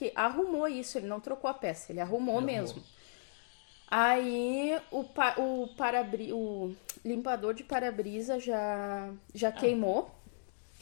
arrumou isso, ele não trocou a peça, ele arrumou mesmo. Aí o limpador de para-brisa já queimou.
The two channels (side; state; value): right; silent; digital silence